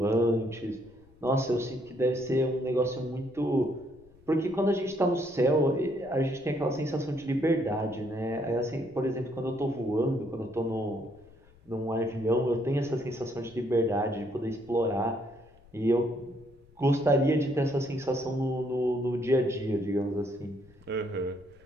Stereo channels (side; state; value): left; noise; rumble, 27 dB below the sound